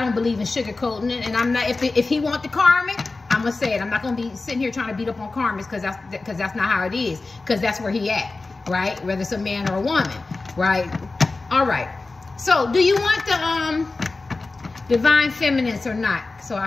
believe in sugarcoating it, and I'm not. If he want the karmic, I'm gonna say it. I'm not gonna be sitting here trying to beat up on karmics because that's not how it is. Because that's where he at, right? Whether it's a man or a woman, right? All right. So, do you want the divine feminines or not? So I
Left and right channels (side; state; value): right; quieter; 3.6 dB